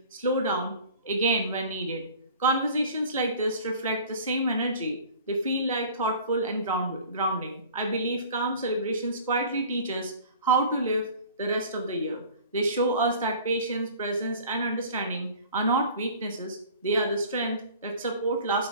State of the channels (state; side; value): inverted; both; correlation -0.45